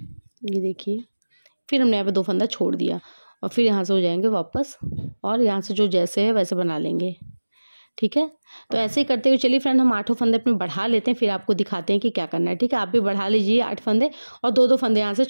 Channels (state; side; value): inverted; both; correlation -1.00